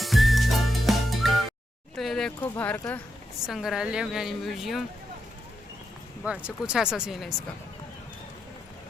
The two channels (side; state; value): both; normal; correlation 0.85